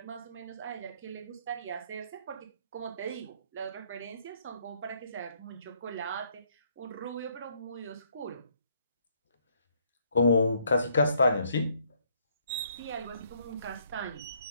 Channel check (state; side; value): inverted; both; correlation -0.67